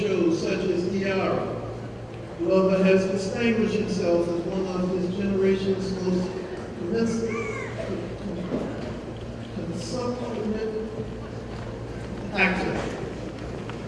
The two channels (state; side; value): identical; both; correlation 1.00